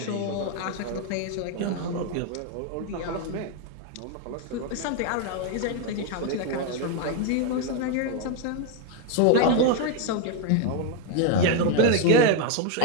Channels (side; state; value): both; different; correlation 0.01